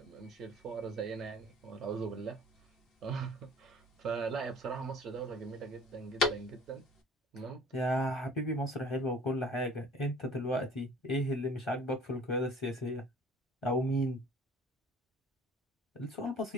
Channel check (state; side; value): normal; both; correlation 0.50